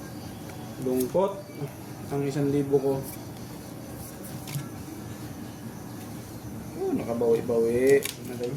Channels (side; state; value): both; identical; correlation 1.00